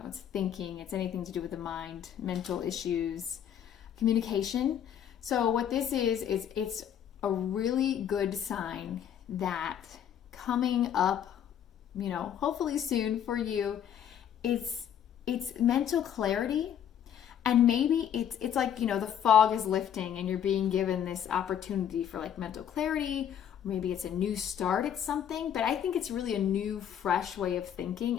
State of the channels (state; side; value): quieter; right; 9.4 dB